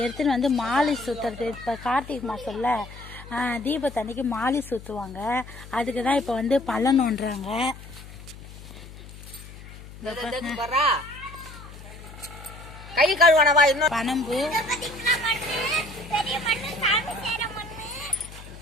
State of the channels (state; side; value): noise; left; hum, 16 dB below the sound